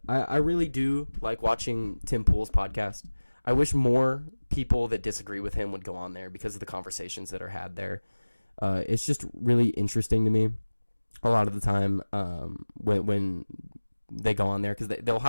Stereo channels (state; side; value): inverted; both; correlation -1.00